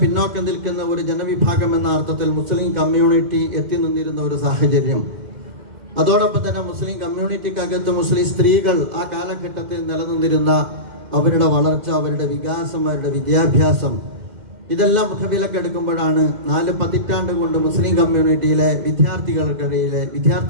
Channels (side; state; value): left; late; 2.1 ms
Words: നിൽക്കുന്ന ഒരു ജനവിഭാഗം എന്ന അർത്ഥത്തിൽ മുസ്ലിം കമ്മ്യൂണിറ്റി എത്തി നിന്നിരുന്ന ഒരു സാഹചര്യം, അതോടൊപ്പം തന്നെ മുസ്ലിം കമ്മ്യൂണിറ്റിക്കകത്ത് മുസ്ലിം സ്ത്രീകൾ ആ കാലഘട്ടത്തിൽ നിലനിന്നിരുന്ന അവരുടെ വളർച്ച, അവരുടെ വികാസം, അവരുടെ വിദ്യാഭ്യാസം, ഇതെല്ലാം മുഖവിലക്കെടുക്കുമ്പോഴാണ് 4 പതിറ്റാണ്ട് കൊണ്ട് മുസ്ലിം കമ്മ്യൂണിറ്റിയിലെ